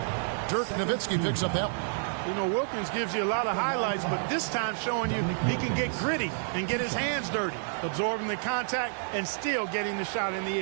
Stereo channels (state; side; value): silent; left; digital silence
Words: Dirk Nowitzki picks up that one. You know, Wilkins gives you a lot of highlights, but this time showing you he can get gritty and get his hands dirty, absorbing the contact and still getting the shot in the